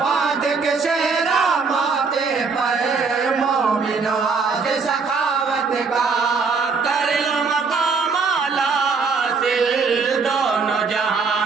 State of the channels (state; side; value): quieter; left; 4.9 dB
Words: کے سیرا ماتھے پر مومن آج سخاوت کا کر لو مقام اعلیٰ حاصل دونوں جہاں